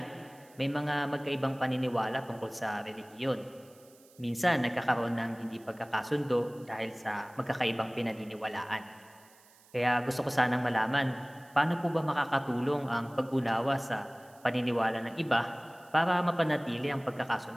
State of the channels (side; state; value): right; noise; hiss, 27 dB below the sound